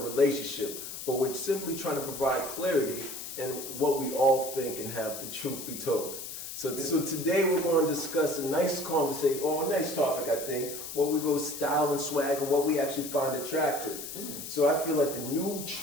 relationship, but we're simply trying to provide clarity in what we all think and have the truth be told. So today we're going to discuss a nice conversation, or a nice topic, I think, where we go style and swag and what we actually find attractive. So I feel like the new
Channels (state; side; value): noise; left; hiss, 9 dB below the sound